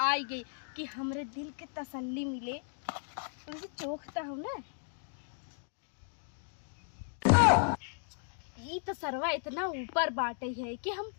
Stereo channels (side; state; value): right; silent; digital silence